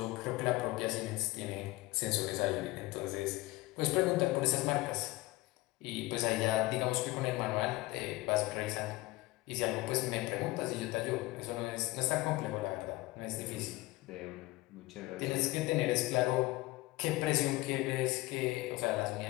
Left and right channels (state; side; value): quieter; right; 20.0 dB